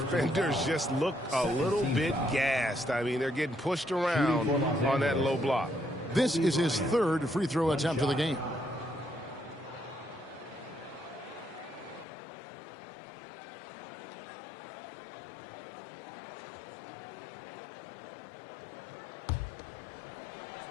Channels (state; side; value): drops out; right; at 12.1 s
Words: just look a little bit gassed. I mean, they're getting pushed around on that low block. This is his 3rd free throw attempt of the game.